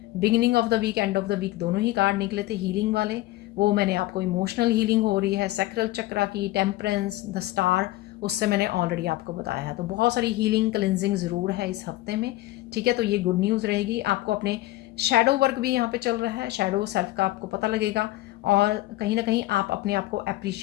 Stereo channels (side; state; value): right; quieter; 17.2 dB